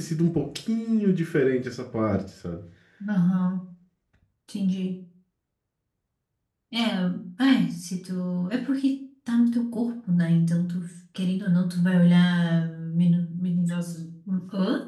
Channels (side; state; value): both; identical; correlation 1.00